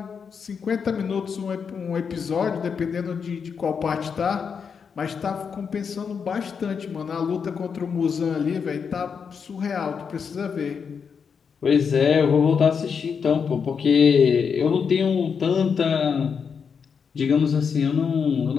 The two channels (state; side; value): quieter; right; 6.3 dB